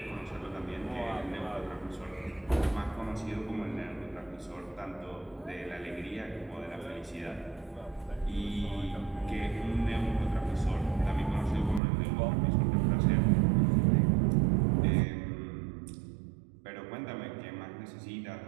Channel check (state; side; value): drops out; left; at 11.8 s